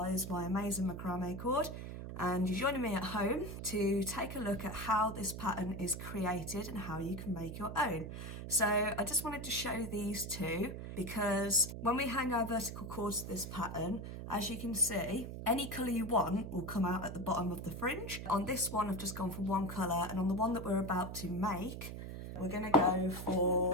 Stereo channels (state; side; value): noise; right; hum, 8 dB below the sound